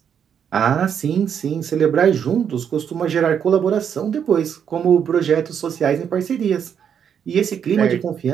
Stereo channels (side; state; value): left; quieter; 8.1 dB